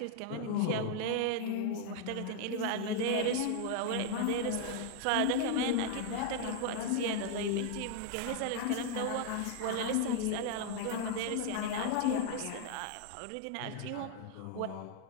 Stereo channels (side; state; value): both; different; correlation 0.00